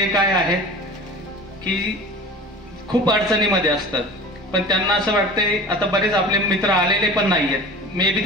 काय आहेत की खूप अडचणीमध्ये असतात, पण त्यांना असं वाटतंय, आता बरेच आपले मित्र आलेले पण नाहीयेत, मे बी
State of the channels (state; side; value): normal; both; correlation 0.38